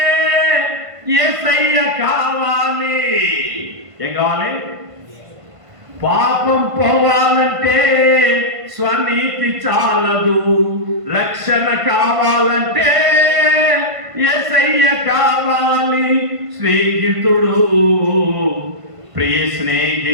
యేసయ్య కావాలి. ఏం కావాలి? పాపం పోవాలంటే స్వనీతి చాలదు, రక్షణ కావాలంటే యేసయ్య కావాలి. స్నేహితుడు, ప్రియ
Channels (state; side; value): late; left; 1.5 ms